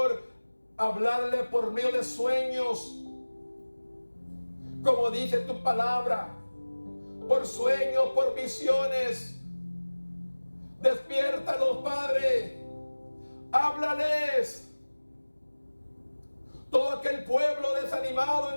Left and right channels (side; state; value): both; inverted; correlation -1.00